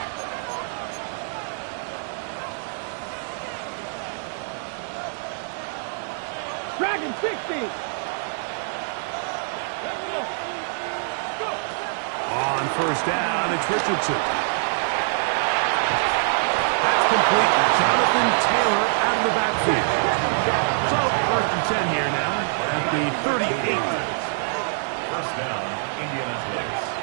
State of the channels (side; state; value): left; silent; digital silence